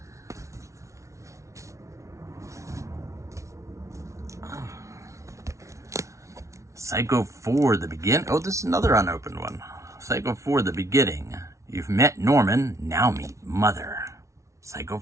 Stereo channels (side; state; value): left; late; 0.14 ms